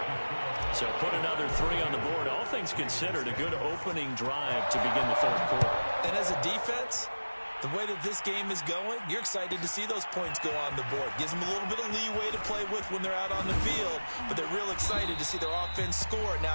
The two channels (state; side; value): inverted; both; correlation -1.00